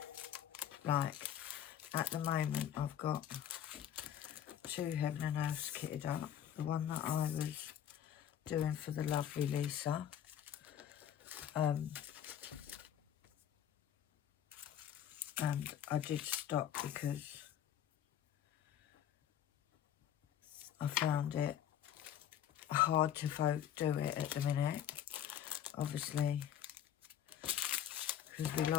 like, at the moment, I've got 2 heaven and earths kitted up. The one that I was doing for the lovely Lisa. And I did stop because I found it hard to do it at the minute. Obviously, because we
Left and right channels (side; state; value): right; quieter; 10.2 dB